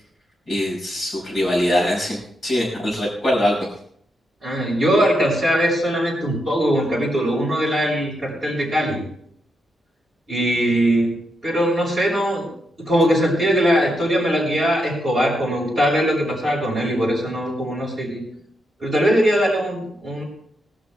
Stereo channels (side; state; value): both; normal; correlation 0.82